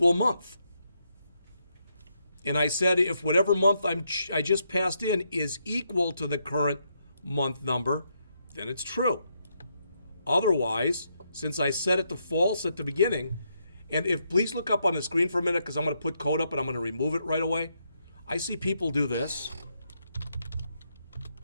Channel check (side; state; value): both; inverted; correlation -0.78